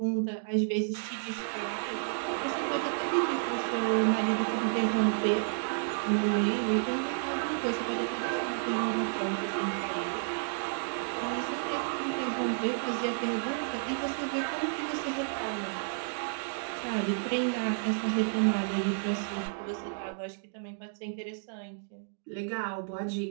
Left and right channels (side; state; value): left; silent; digital silence